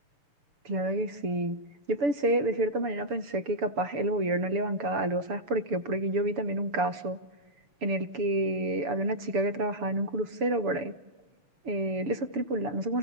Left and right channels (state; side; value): late; left; 6.9 ms